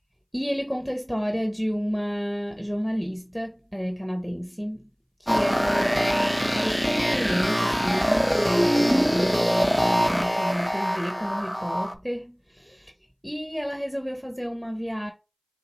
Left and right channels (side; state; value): both; identical; correlation 1.00